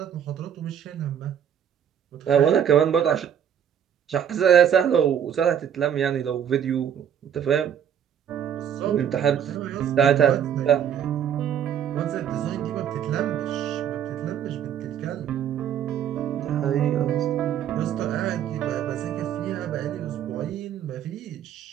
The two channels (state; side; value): quieter; left; 9.0 dB